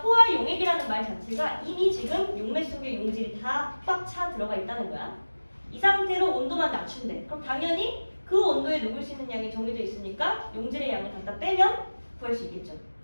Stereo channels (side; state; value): both; inverted; correlation -1.00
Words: 용액이라는 말 자체가 이미 지금 용매 속에 용질이 다 꽉 차 들어가 있다는 거야. 이 상태로 온도만 낮춘대. 그럼 당연히 그 온도에 녹을 수 있는 양이 정해져 있으니까 용질의 양을 갖다 빼면 구할 수 있겠죠.